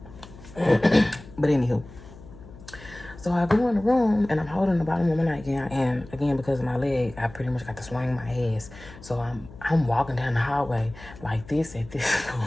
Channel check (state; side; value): noise; left; hum, 18 dB below the sound